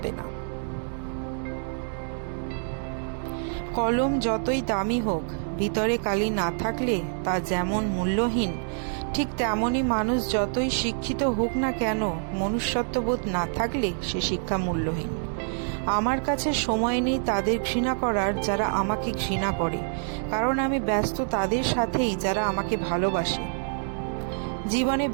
না। কলম যতই দামি হোক, ভিতরে কালি না থাকলে তা যেমন মূল্যহীন, ঠিক তেমনই মানুষ যতই শিক্ষিত হোক না কেন, মনুষ্যত্ববোধ না থাকলে সে শিক্ষা মূল্যহীন। আমার কাছে সময় নেই তাদের ঘৃণা করার যারা আমাকে ঘৃণা করে, কারণ আমি ব্যস্ত তাদের সাথেই যারা আমাকে ভালোবাসে। জীবনে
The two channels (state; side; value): silent; left; digital silence